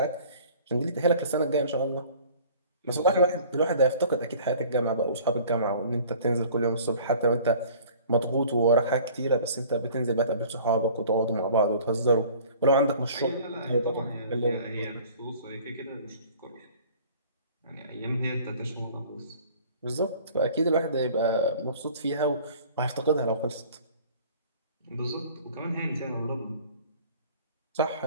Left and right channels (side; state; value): both; inverted; correlation -0.49